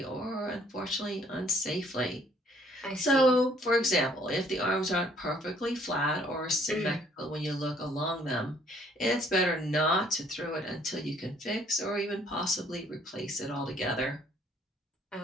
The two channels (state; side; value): normal; both; correlation 0.62